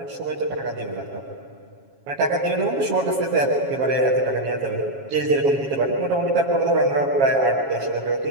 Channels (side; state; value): left; late; 7.3 ms